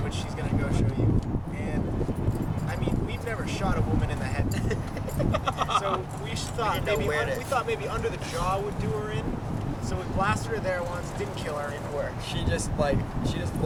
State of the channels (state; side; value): identical; both; correlation 1.00